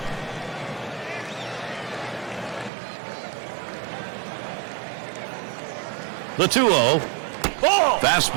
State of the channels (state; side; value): drops out; left; at 2.7 s